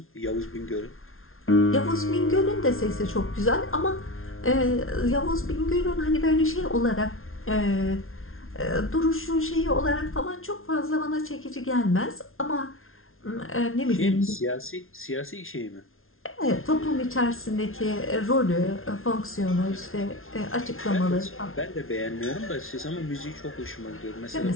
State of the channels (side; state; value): right; late; 0.61 ms